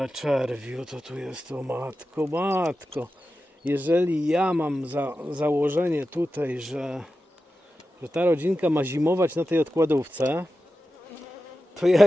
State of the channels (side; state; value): both; normal; correlation 0.92